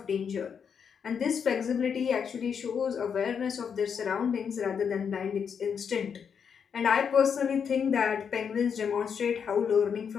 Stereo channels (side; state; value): right; quieter; 7.0 dB